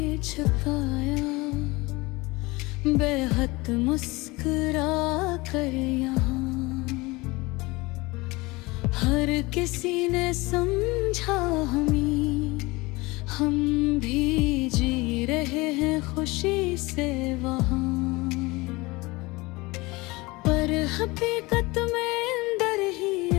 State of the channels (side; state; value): right; quieter; 23.0 dB